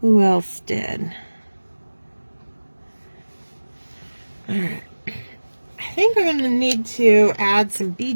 who else did. All right. I think I'm going to need to add some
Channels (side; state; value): both; inverted; correlation -1.00